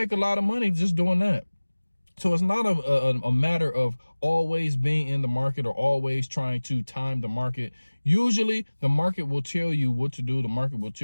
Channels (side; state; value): both; inverted; correlation -1.00